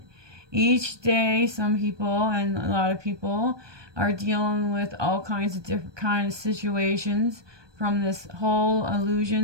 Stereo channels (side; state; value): left; late; 1.2 ms